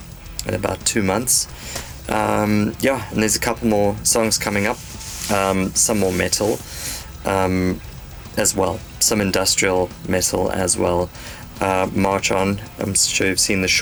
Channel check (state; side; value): identical; both; correlation 1.00